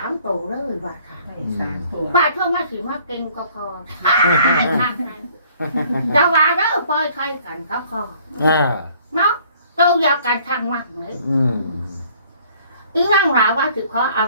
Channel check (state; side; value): inverted; both; correlation -0.58